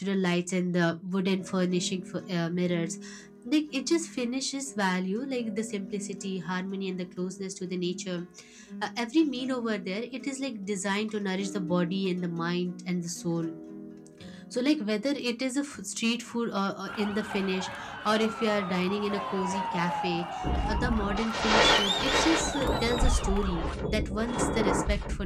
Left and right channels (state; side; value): identical; both; correlation 1.00